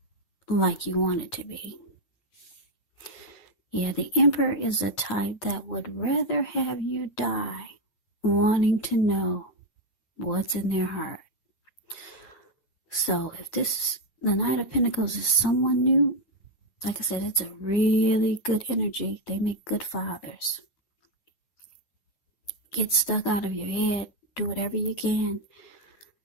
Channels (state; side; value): late; right; 9.4 ms